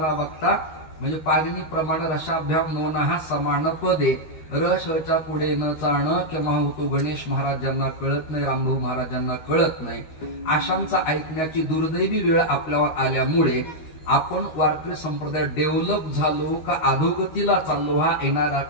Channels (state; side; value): late; right; 13 ms